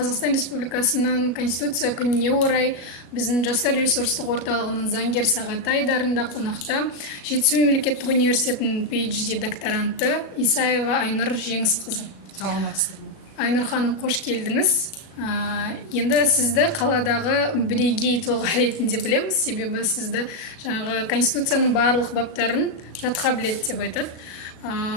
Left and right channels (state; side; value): late; right; 37 ms